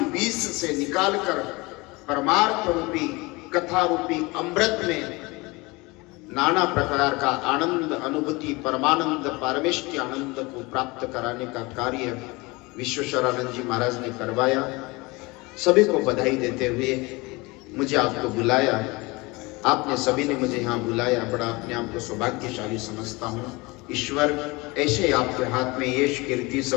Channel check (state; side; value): quieter; right; 24.3 dB